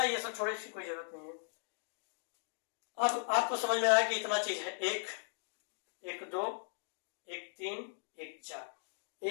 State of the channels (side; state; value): right; silent; digital silence